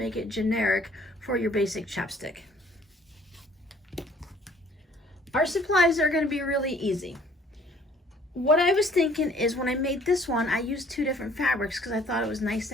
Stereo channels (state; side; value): normal; both; correlation 0.57